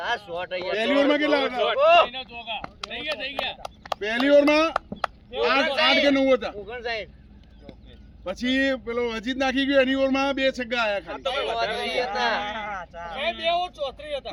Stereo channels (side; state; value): both; identical; correlation 1.00